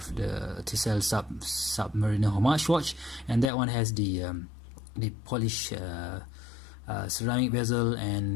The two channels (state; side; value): drops out; right; at 3.5 s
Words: Tisell Submariner homage watch, and that one has the polished ceramic bezel,